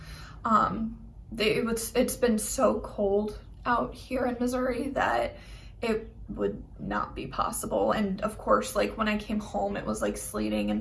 It's been so cold out here in Missouri that it would not be possible. And of course, like when I came home, it was like sleeting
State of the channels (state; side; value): identical; both; correlation 1.00